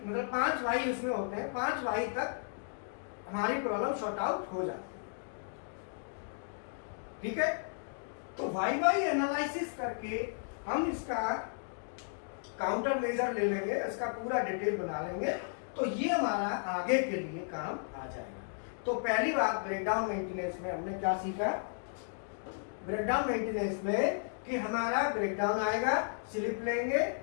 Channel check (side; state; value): right; silent; digital silence